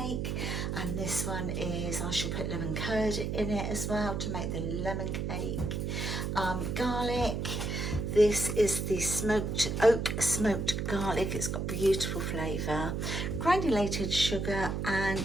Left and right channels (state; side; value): noise; right; hum, 1 dB below the sound